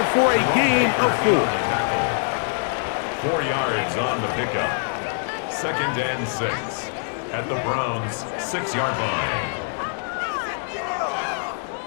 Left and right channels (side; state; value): right; silent; 63 dB below the other